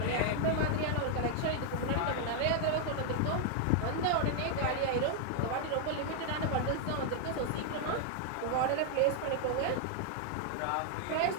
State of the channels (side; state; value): both; different; correlation 0.00